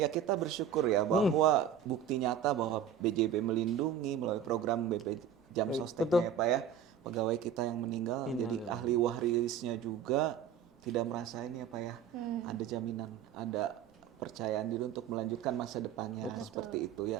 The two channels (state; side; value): quieter; left; 8.1 dB